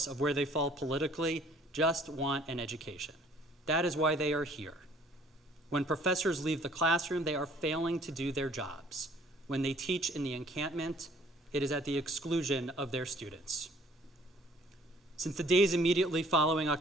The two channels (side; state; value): both; normal; correlation 0.57